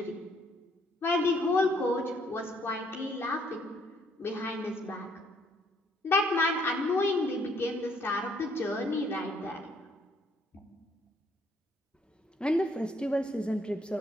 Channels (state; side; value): normal; both; correlation 0.67